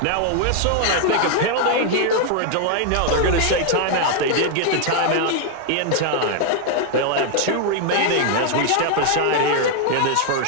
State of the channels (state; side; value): different; both; correlation 0.00